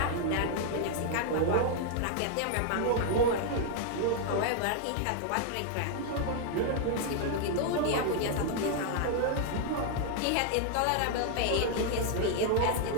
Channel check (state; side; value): different; both; correlation 0.00